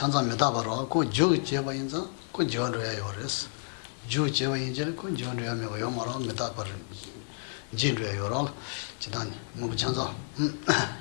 바로 그 저제바 인자 그 저로야 요레스 저제바 인자 그 저로야 메요 말아 메다 바로 진로야 요라 지단 무부 찬자.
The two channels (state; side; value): silent; right; 58 dB below the other